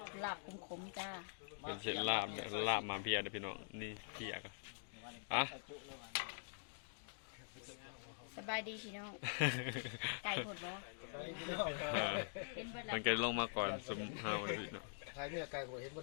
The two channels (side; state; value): right; silent; digital silence